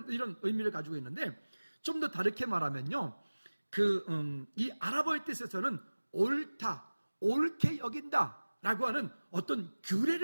이런 의미를 가지고 있는데, 좀 더 다르게 말하면요, 이 아랍어의 뜻에서는 옳다, 옳게 여긴다라고 하는 어떤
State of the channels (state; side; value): inverted; both; correlation -1.00